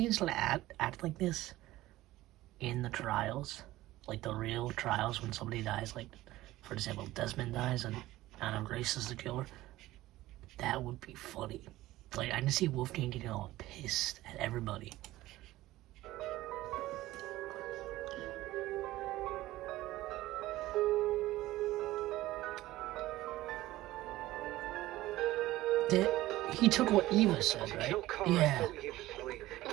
gonna act like this in the trials, like the real trials when somebody dies, like for example Desmond dies and Anna Grace is the killer, that would be funny. Like I can see Wolfgang getting all pissed at everybody. He took what Eva said, right? Kill Kara Yeah. so easily and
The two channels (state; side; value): quieter; left; 16.6 dB